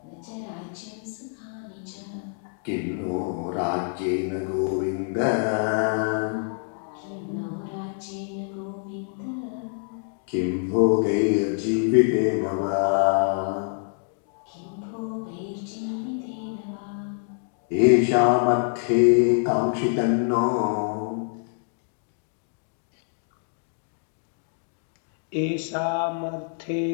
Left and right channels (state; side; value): silent; right; 61 dB below the other